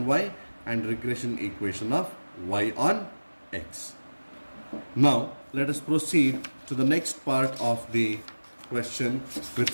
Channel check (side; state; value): both; inverted; correlation -1.00